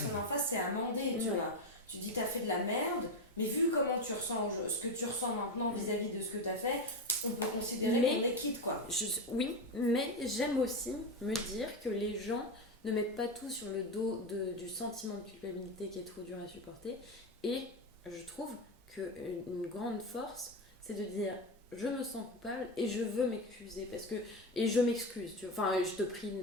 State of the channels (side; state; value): both; normal; correlation 0.14